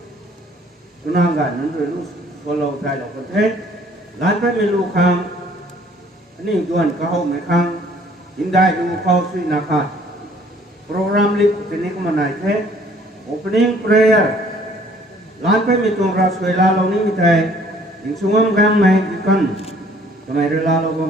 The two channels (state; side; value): normal; both; correlation 0.58